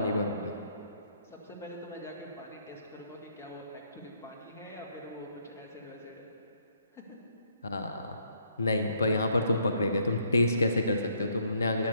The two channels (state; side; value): inverted; both; correlation -0.69